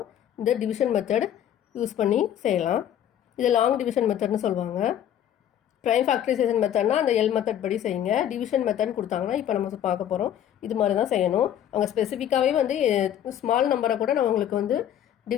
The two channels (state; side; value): quieter; right; 10.5 dB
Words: இந்த டிவிஷன் மெத்தட் யூஸ் பண்ணி செய்யலாம். இது லாங் டிவிஷன் மெத்தட்னு சொல்லுவாங்க. ப்ரைம் ஃபேக்டரைசேஷன் மெத்தட்னா அந்த எல் மெத்தட் படி செய்யுங்க. டிவிஷன் மெத்தட் கொடுத்தாங்கன்னா இப்போ நம்ம பார்க்க போகிறோம், இது மாதிரி தான் செய்யணும். அவங்க ஸ்பெசிஃபிக்காகவே வந்து ஸ்மால் நம்பரை கூட நம்ம உங்களுக்கு வந்து